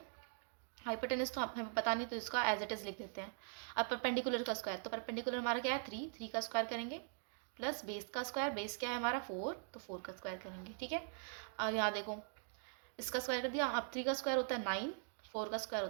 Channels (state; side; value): silent; left; digital silence